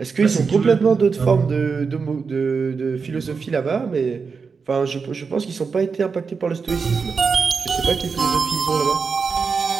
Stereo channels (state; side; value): quieter; left; 5.2 dB